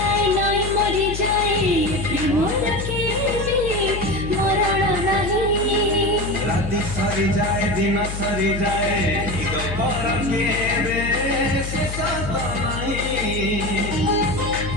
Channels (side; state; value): left; noise; hum, 6 dB below the sound